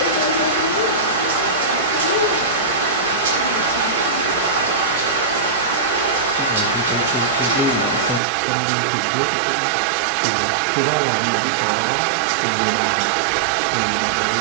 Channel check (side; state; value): left; drops out; at 8.2 s